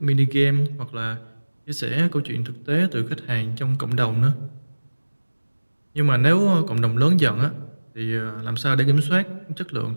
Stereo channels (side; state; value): both; inverted; correlation -1.00